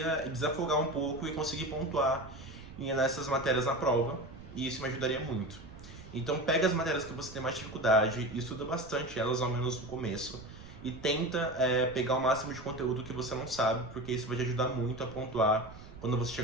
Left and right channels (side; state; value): right; noise; rumble, 16 dB below the sound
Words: desafogar um pouco e conseguir pontuar nessas matérias na prova, e isso me ajudaria muito. Então, pega as matérias que você tem mais dificuldade e estuda bastante elas, ao menos no começo, e tenta pegar o máximo de conteúdo que você não sabe, porque isso vai te ajudar muito a pontuar quando você